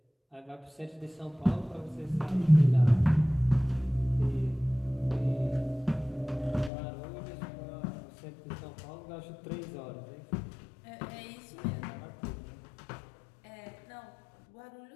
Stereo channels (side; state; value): right; drops out; at 6.7 s